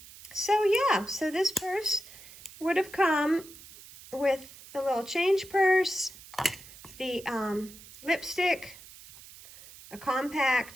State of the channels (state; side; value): noise; right; hiss, 18 dB below the sound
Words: So this purse would have come with the little change purse, the lipstick, a